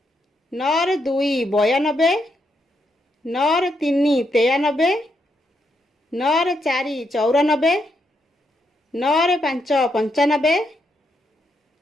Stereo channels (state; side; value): normal; both; correlation 0.79